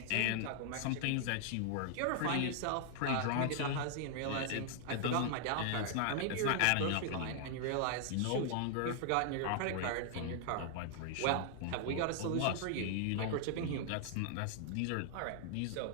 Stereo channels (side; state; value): both; different; correlation 0.00